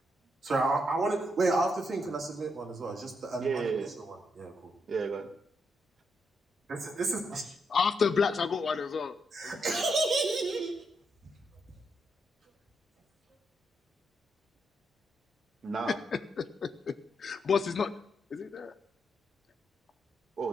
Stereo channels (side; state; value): both; normal; correlation 0.80